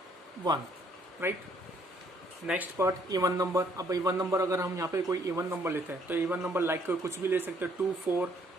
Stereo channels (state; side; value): normal; both; correlation 0.65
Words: 1, right। Next part, even number. अब इवन नंबर अगर हम यहाँ पे कोई इवन नंबर लेते हैं, तो इवन नंबर लाइक कुछ भी ले सकते हो, 2 4